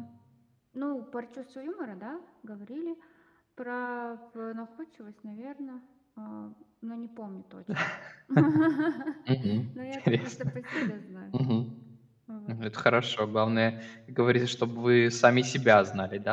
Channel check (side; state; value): both; identical; correlation 1.00